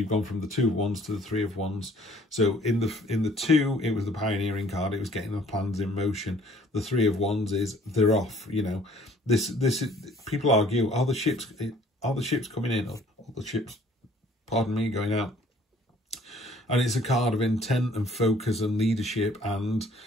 gone from the 2 of Wands to the 3 of Wands. So in the 2, it was the pioneering card. It was getting the plans in motion. The 3 of Wands is they're off. You know, this is, people argue, are the ships coming in, or are the ships, pardon me, going out? And it's a card of intent and focus and leadership, and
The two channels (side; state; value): both; normal; correlation 0.57